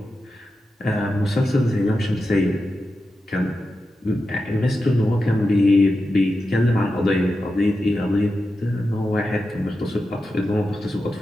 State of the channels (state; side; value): normal; both; correlation 0.90